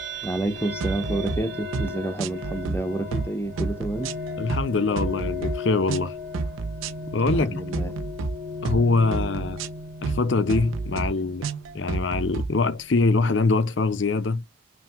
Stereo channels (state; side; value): normal; both; correlation 0.55